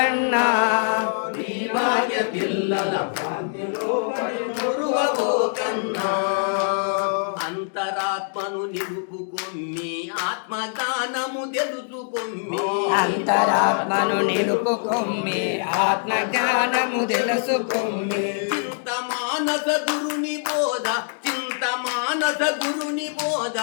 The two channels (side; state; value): right; silent; digital silence